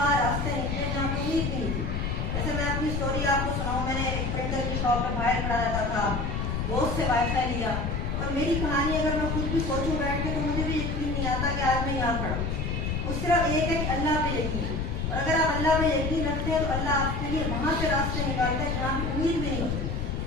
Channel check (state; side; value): noise; left; rumble, 1 dB below the sound